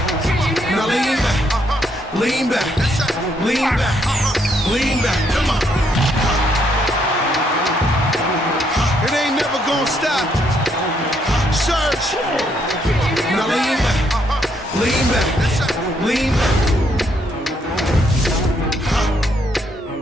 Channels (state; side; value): normal; both; correlation 0.73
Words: Now lean back, lean back, lean back, lean back. Come on. It ain't never gonna stop. Search. Now lean back, lean back.